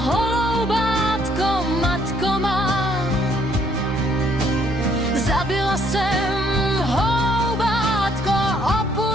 matko má. Zabila jsem holoubátko,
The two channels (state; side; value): normal; both; correlation 0.66